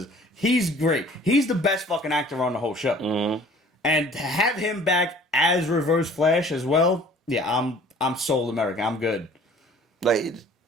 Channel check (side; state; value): both; normal; correlation 0.51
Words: He's great. He's the best fucking actor on the whole show. Mm-hmm. And to have him back as Reverse Flash as well, yeah, I'm sold America. I'm good. Like,